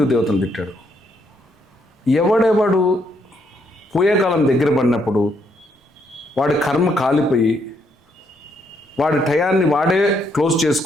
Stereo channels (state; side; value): normal; both; correlation 0.74